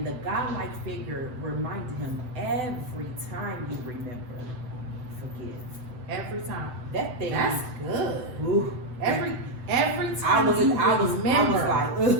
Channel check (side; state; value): left; late; 7.9 ms